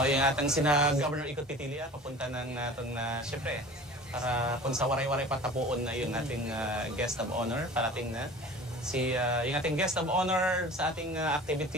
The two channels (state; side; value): normal; both; correlation 0.40